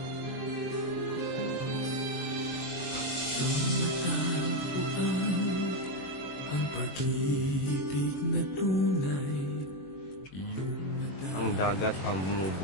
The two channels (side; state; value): right; late; 21 ms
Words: Ang pag-ibig na tunay. Ang dagat ang